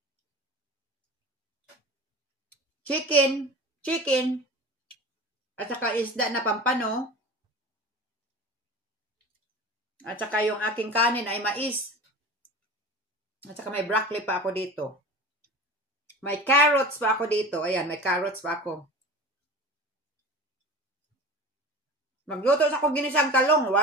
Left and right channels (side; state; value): both; normal; correlation 0.35